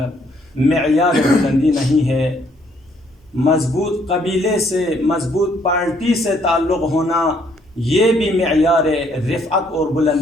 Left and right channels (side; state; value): both; normal; correlation 0.67